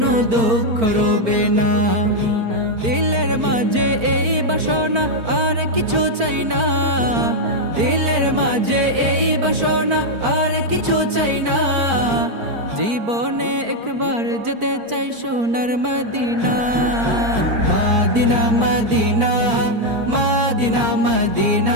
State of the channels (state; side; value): late; left; 4.4 ms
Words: দুঃখ রবে না। দিলের মাঝে এই বাসনা আর কিছু চাই না, দিলের মাঝে এই বাসনা আর কিছু চাই না। জীবনে একবার যেতে চাই সোনার মদিনা, মদিনা মদিনা মদিনা